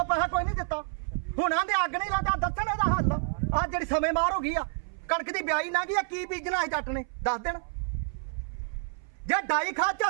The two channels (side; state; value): left; silent; 59 dB below the other